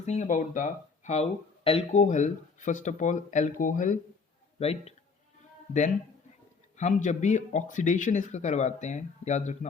about the how alcohol. First of all, alcohol, right? Then हम जब भी oxidation इसका करवाते हैं, याद रखना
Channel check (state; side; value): quieter; right; 4.8 dB